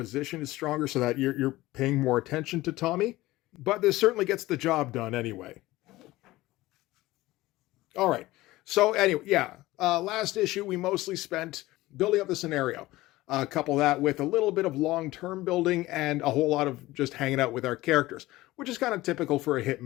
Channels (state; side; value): quieter; right; 18.1 dB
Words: is stronger, so that you're paying more attention to Tommy, but this certainly gets the job done anyway. All right. So anyway, yeah, last issue, we mostly spent building up the scenario. Couple that with a little bit of long-term building and a whole lot of just hanging out with our characters, which is kind of typical for a